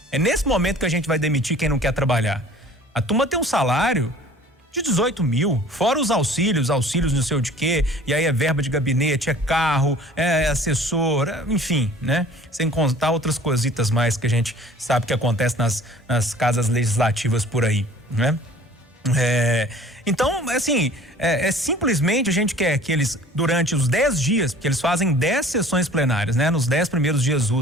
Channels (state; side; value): normal; both; correlation 0.49